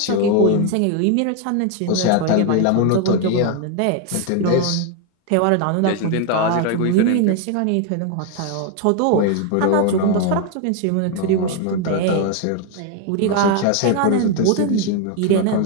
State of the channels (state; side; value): different; both; correlation 0.01